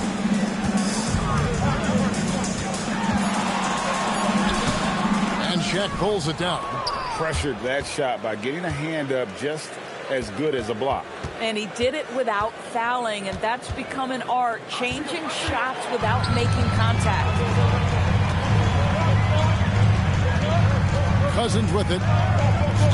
Havlicek pulls it down. Pressured that shot by getting a hand up just as good as a block. And he did it without fouling, and that's become an art, changing shots without making contact. Cousins with it,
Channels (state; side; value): identical; both; correlation 1.00